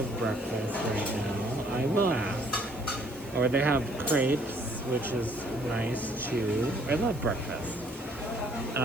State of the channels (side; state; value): right; noise; hiss, 21 dB below the sound